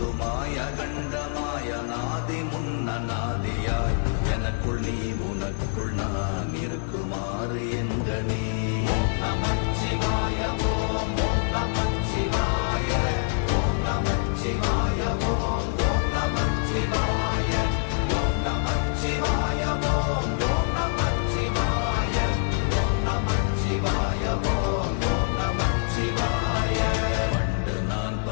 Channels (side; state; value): right; silent; digital silence